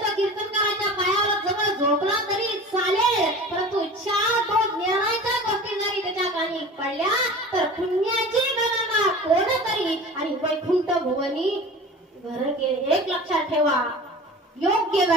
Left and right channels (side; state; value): both; normal; correlation 0.37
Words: तो कीर्तनकाराच्या पायावर जवळ झोपला तरी चालेल, परंतु 4 ज्ञानाच्या गोष्टी जरी त्याच्या कानी पडल्या तर पुण्याची गणना कोण करी आणि वैकुंठ भुवनी घर गेले. एक लक्षात ठेवा, योग्य